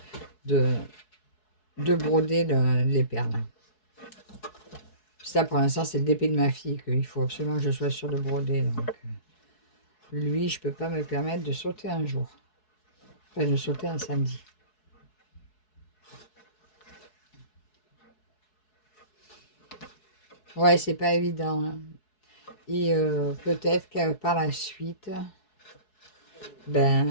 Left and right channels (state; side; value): late; right; 4.7 ms